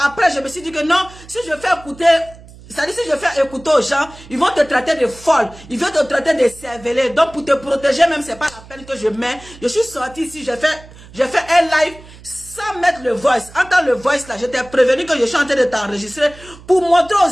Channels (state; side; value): noise; right; hum, 20 dB below the sound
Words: Après, je me suis dit que non, si je fais écouter, c'est-à-dire si je fais écouter aux gens, ils vont te traiter de folle, ils vont te traiter de cervelée. Donc pour te protéger même, c'est pas la peine que je mets. Je suis sorti ici, j'ai fait un live sans mettre le voice. Entends le voice là, je t'ai prévenu que je suis en train de t'enregistrer pour montrer aux